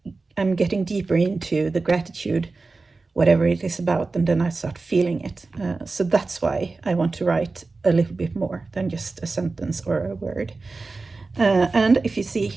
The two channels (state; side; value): quieter; left; 3.8 dB